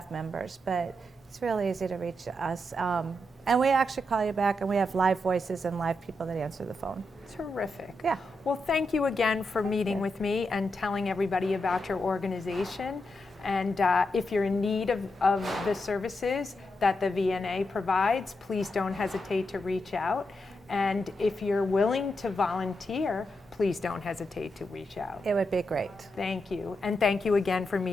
members, but it's really easy to reach us. And we actually call you back, and we have live voices and live people that answer the phone. Terrific. Yeah. Well, thank you again for meeting with me and telling everybody about your organization. And if you're in need of the services that the VNA provides, please don't hesitate to reach out. And if you're willing to volunteer, please don't hesitate to reach out. It would be great. Thank you. And thank you again for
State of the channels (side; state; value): both; normal; correlation 0.85